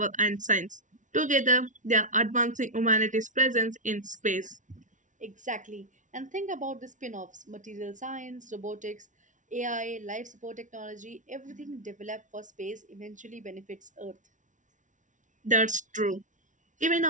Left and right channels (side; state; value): left; late; 0.37 ms